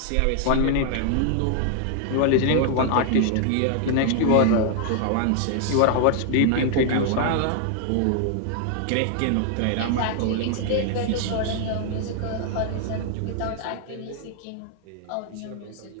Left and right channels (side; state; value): both; different; correlation 0.00